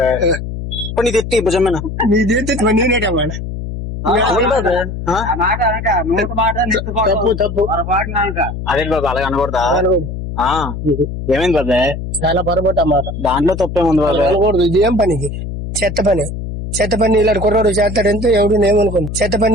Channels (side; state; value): left; noise; hum, 7 dB below the sound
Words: ఇప్పుడు నీది ఎత్తి భుజమేనా నీది నేనేటమాట తప్పు తప్పు అదే బాబా అలాగ అనకూడదా. ఏమైంది బాబాయ్ చాలా పొరపాటు అన్నమాట. దాంట్లో తప్పేముంది బాబాయ్ అనకూడదు. ఇది ఏం పనికి చెత్త పని ఇలాంటి కుర్రాడు చేస్తాడంటే ఎవడు నేమనుకోను. చెత్త